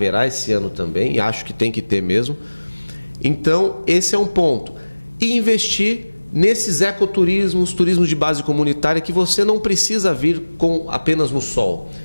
esse ano também, e acho que tem que ter mesmo. Então, esse é um ponto. E investir nesses ecoturismos, turismo de base comunitária, que você não precisa vir com apenas no sol.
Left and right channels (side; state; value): both; inverted; correlation -1.00